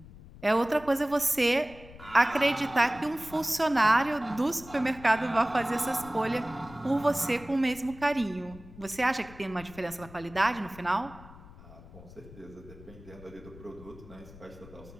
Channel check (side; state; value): left; noise; rumble, 19 dB below the sound